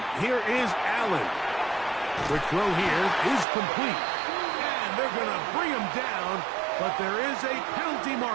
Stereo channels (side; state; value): left; drops out; at 3.5 s